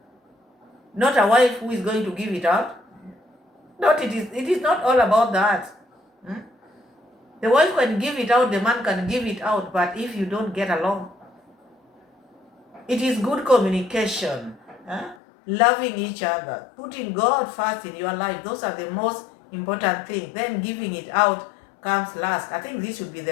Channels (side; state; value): right; drops out; at 15.2 s